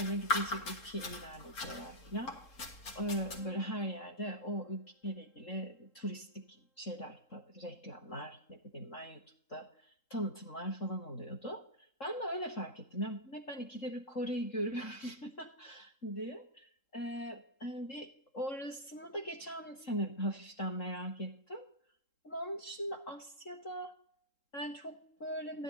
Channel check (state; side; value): late; right; 3.7 ms